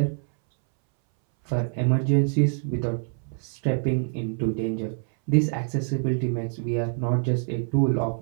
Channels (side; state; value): left; silent; 61 dB below the other